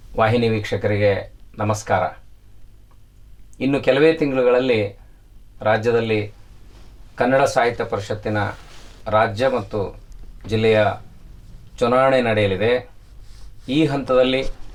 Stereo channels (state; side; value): identical; both; correlation 1.00